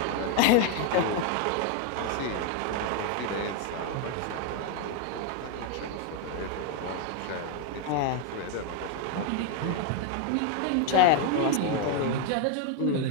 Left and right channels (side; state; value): both; different; correlation 0.01